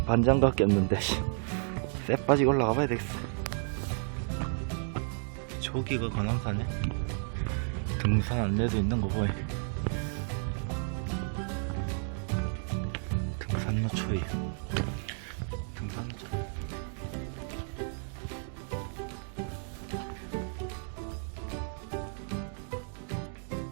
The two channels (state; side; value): silent; left; 56 dB below the other